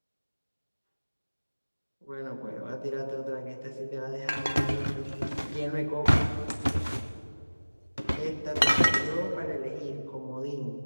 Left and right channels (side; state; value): both; inverted; correlation -1.00